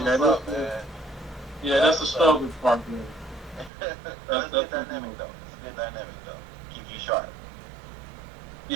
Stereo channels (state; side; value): drops out; left; at 3.7 s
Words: up, man. Yeah, that's the struggle part, man. That's a good dynamic, though. It's a good dynamic, though. Keep you sharp.